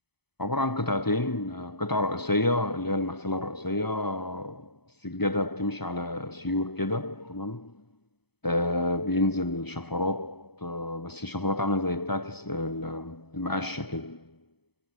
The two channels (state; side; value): late; right; 0.98 ms